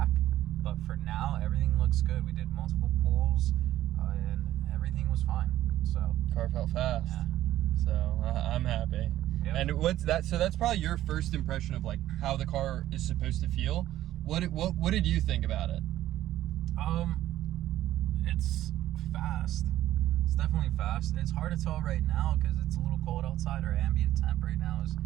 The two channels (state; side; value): quieter; left; 13.7 dB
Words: But for now, everything looks good. We did multiple pulls, and everything was fine. So car felt fast. Yeah. So I'm happy. Yep. And what's that? So that's probably your first impression of like how the car is supposed to feel. What did you think about it? It's fast. It's definitely fast. It's hard to tell right now because it's a little cold outside. Our ambient temp right now is